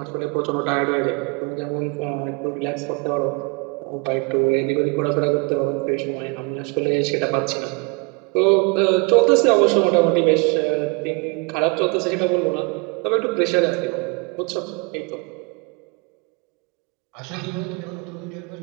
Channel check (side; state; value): left; quieter; 30.7 dB